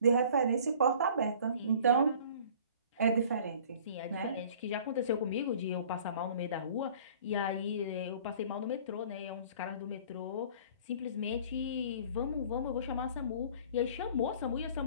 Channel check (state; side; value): inverted; both; correlation -0.49